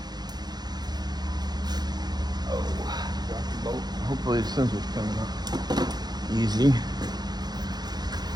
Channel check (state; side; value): late; left; 0.20 ms